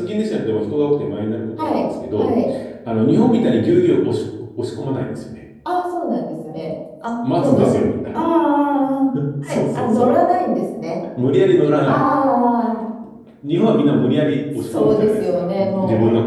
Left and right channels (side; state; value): both; identical; correlation 1.00